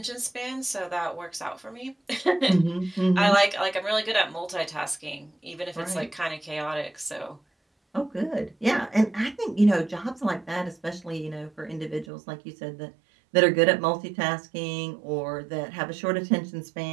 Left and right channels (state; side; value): drops out; left; at 12.1 s